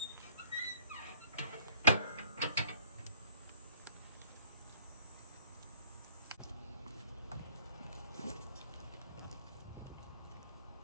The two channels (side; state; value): both; inverted; correlation -0.54